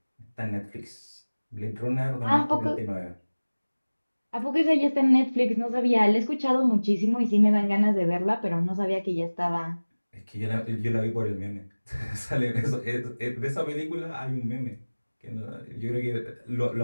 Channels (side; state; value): both; inverted; correlation -1.00